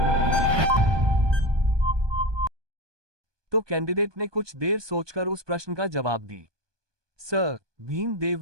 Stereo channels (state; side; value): late; left; 1.2 ms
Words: तो कैंडिडेट ने कुछ देर सोचकर उस प्रश्न का जवाब दी। सर,